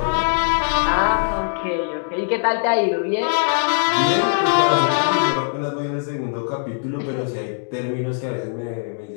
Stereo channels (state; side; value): silent; right; digital silence